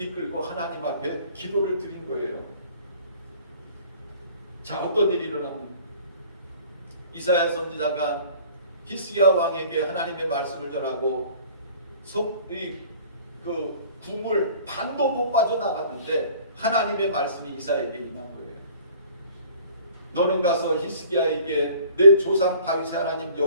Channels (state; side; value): inverted; both; correlation -0.51